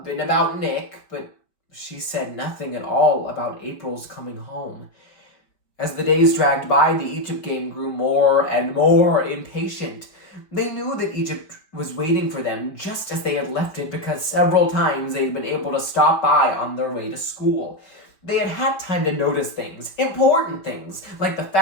and about Nick, but she said nothing at all about April's coming home. As the days dragged by, the Egypt game grew more and more impatient. They knew that Egypt was waiting for them just as they had left it because several times they had been able to stop by on their way to school. They had had time to notice things, important things, like the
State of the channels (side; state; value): right; late; 5.2 ms